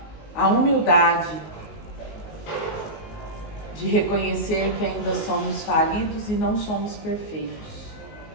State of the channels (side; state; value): right; late; 19 ms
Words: a humildade de reconhecer que ainda somos falidos e não somos perfeitos.